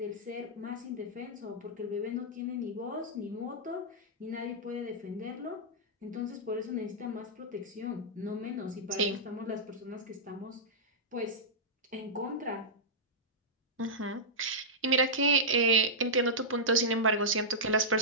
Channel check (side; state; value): both; normal; correlation -0.12